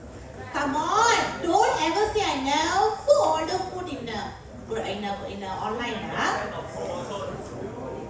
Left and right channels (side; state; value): both; identical; correlation 1.00